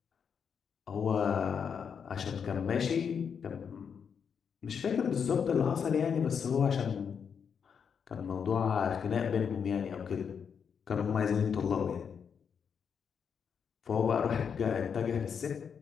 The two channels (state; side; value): quieter; right; 6.9 dB